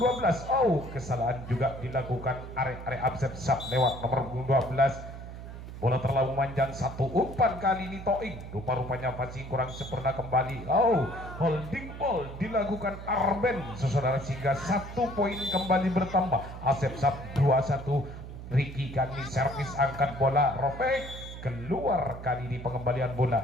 12, kesalahan juga dilakukan area Asep Sab lewat nomor punggung 12. Bola terlalu panjang, satu umpan kali ini Toing. Rupa-rupanya passing kurang sempurna kembali. Holding ball dilakukan Arben, saudara, sehingga 1 poin kembali bertambah. Asep Sab 2-1. Ricky kali servis angkat bola robek keluar. Kali ini pengembalian bola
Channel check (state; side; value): noise; right; hum, 11 dB below the sound